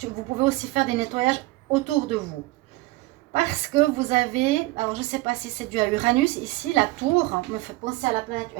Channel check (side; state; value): left; quieter; 20.2 dB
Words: vous pouvez aussi faire des nettoyages autour de vous. Parce que vous avez, alors je ne sais pas si c'est dû à Uranus, ici la tour me fait penser à la planète